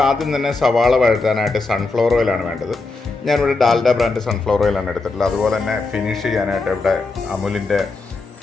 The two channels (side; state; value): right; quieter; 3.6 dB